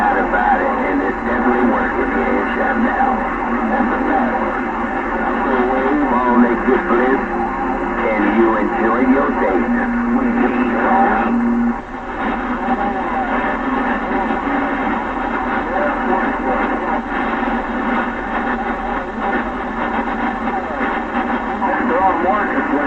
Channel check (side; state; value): both; identical; correlation 1.00